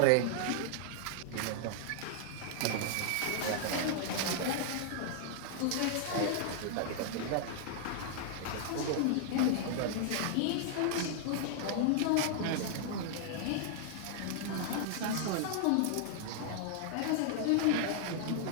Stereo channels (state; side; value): different; both; correlation -0.01